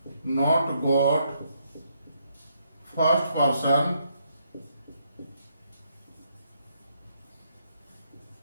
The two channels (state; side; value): inverted; both; correlation -0.75